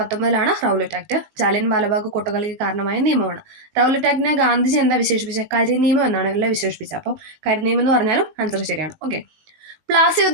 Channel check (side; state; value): left; late; 19 ms